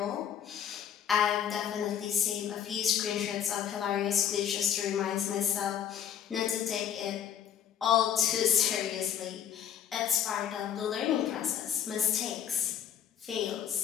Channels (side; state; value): right; quieter; 9.3 dB